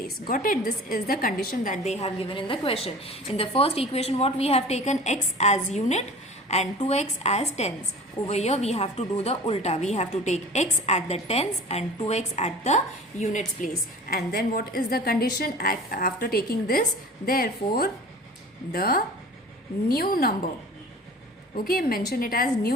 Got it? This is the condition that they have given in the question. In the first equation, what we have taken x as unit and 2x as tens. Over here we have to do the ulta. We have to take x at the tens and 2x at the units place. And then what is the condition after taking this? Therefore the new number, okay, mention it as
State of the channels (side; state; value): both; normal; correlation 0.41